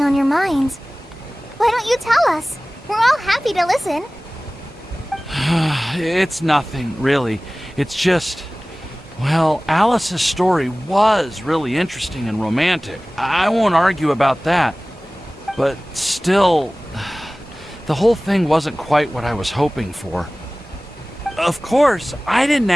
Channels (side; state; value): both; normal; correlation 0.98